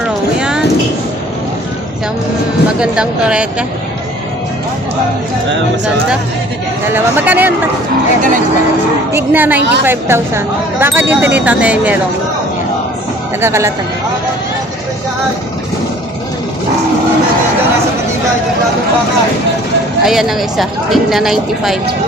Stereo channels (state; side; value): normal; both; correlation 0.52